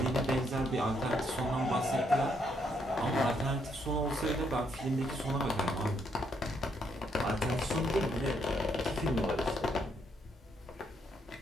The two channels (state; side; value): normal; both; correlation 0.74